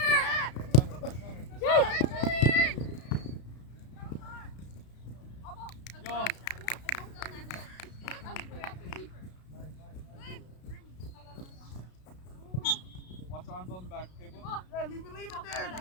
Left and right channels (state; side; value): late; right; 33 ms